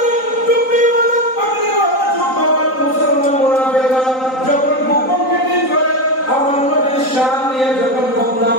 টুপিওয়ালা পাগড়িওয়ালা জুব্বাওয়ালা মুসলমান মুনাফিকরা যখন গোপন মিটিং করে আমার নবীর শান নিয়ে যখন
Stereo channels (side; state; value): right; late; 3.9 ms